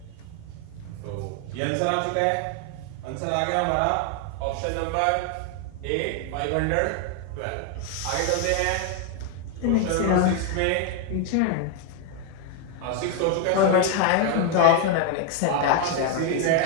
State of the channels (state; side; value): different; both; correlation 0.00